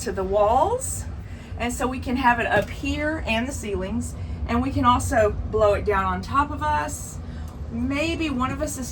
to the walls, and so we can have it up here and the ceilings, and we can also blow it down on top of us. Maybe one of us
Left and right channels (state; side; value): identical; both; correlation 1.00